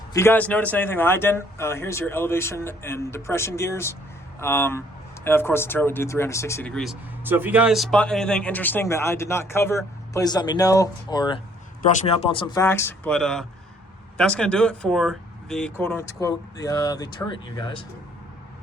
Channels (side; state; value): both; normal; correlation 0.62